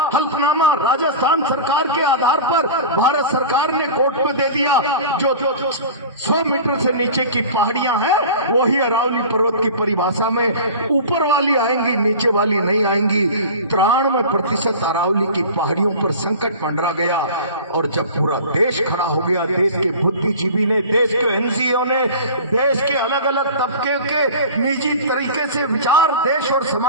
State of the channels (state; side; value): inverted; both; correlation -0.36